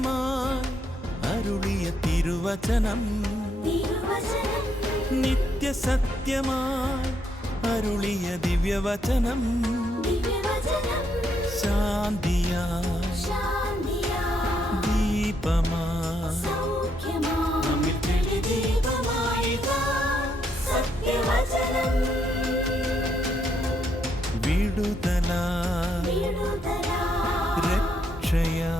അരുളിയ തിരുവചനം, നിത്യസത്യമായി അരുളിയ ദിവ്യവചനം, ശാന്തിയായി ദീപമായി വിടുതലായി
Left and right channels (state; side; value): normal; both; correlation 0.75